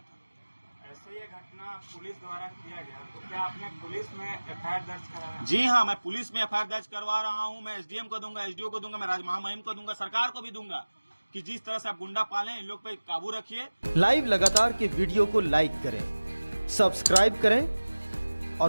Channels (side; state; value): both; inverted; correlation -1.00